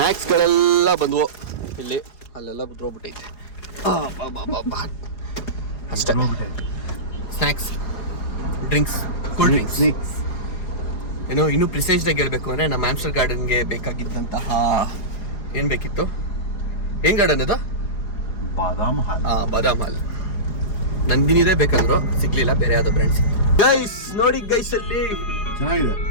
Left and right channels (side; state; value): right; late; 4.8 ms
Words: ಬಂದವು ಇಲ್ಲಿ, ಅಲ್ಲೆಲ್ಲ ಬಿದ್ದೋಗ್ಬಿಟ್ಟೈತೆ. ಅಷ್ಟೇ ಸ್ನ್ಯಾಕ್ಸ್, ಡ್ರಿಂಕ್ಸ್, ಕೂಲ್ ಡ್ರಿಂಕ್ಸ್. ಏನೋ ಇನ್ನೂ ಪ್ರಿಸೈಸ್ಡಾಗಿ ಹೇಳ್ಬೇಕು ಅಂದರೆ ನಮ್ಮ ಆಮ್ಸ್ಟರ್ ಗಾರ್ಡನ್ಗೆ ಬೇಕಾಗಿದ್ದಂತಹ ಏನು ಬೇಕಿತ್ತು? ಏನು ಗಾರ್ಡನ್ ಅದು? ಬಾದಾಮ್ ಹಾಲ್. ನಂದಿನಿದೆ ಬೇಕಂದ್ರು ಸಿಗ್ಲಿಲ್ಲ, ಬೇರೆ ಯಾವ್ದೋ ಬ್ರ್ಯಾಂಡ್ ಸಿಕ್ತು. ಗೈಸ್ ನೋಡಿ ಗೈಸ್, ಅಲ್ಲಿ